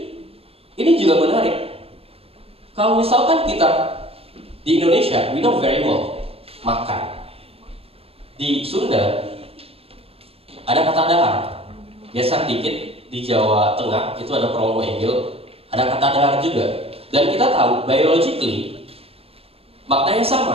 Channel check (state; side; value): late; left; 0.28 ms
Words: ini juga menarik. Kalau misalkan kita di Indonesia, we know very well makan. Di Sunda ada kata dahar. Geser dikit di Jawa Tengah itu ada promo enggil, ada kata dahar juga. Dan kita tahu biologically maknanya